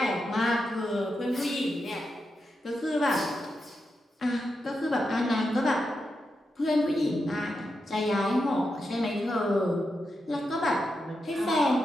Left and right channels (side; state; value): both; normal; correlation 0.87